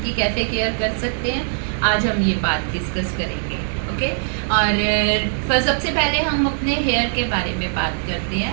की कैसे केयर कर सकते हैं, आज हम ये बात डिस्कस करेंगे। ओके। और सबसे पहले हम अपने हेयर के बारे में बात करते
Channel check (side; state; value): left; silent; digital silence